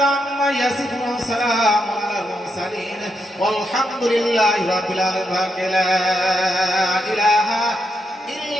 عما يصفون وسلام على المرسلين والحمد لله رب العالمين لا إله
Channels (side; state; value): both; normal; correlation 0.82